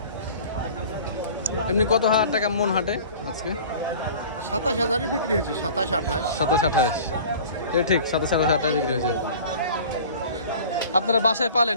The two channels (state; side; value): inverted; both; correlation -0.43